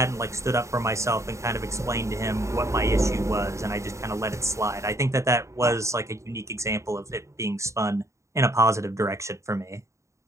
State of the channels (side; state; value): left; late; 0.14 ms